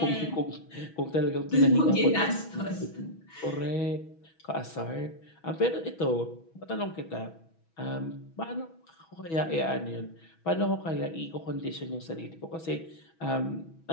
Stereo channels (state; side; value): late; right; 6.2 ms